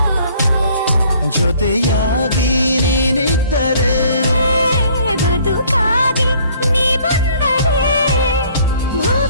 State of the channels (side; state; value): both; inverted; correlation -0.58